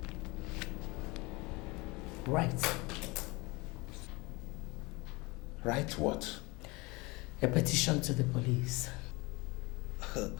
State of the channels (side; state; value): right; quieter; 24.8 dB